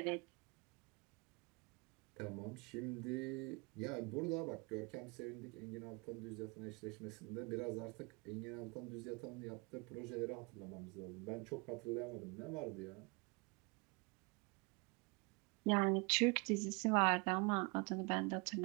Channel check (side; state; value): left; quieter; 29.7 dB